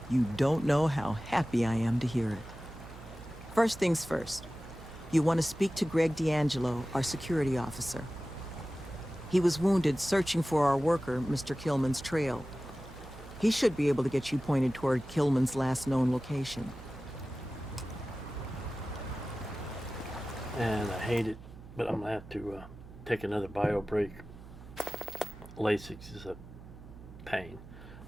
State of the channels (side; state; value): right; noise; hum, 17 dB below the sound